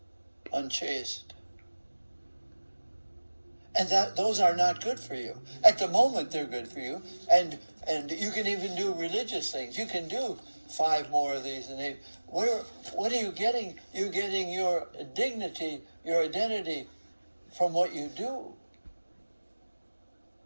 unchaste. And those are not good for you. At the moment, they're good for you, and you can even do religious things. You can do 5 more of these and 8. What are you getting? You're getting your dignity, your identity from what you do,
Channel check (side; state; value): both; inverted; correlation -1.00